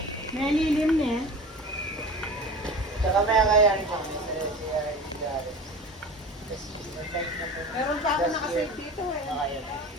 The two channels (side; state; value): both; normal; correlation 0.35